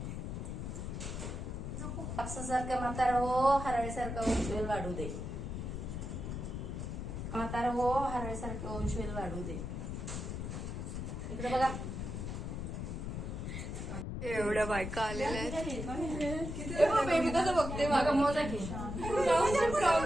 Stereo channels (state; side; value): noise; left; rumble, 5 dB below the sound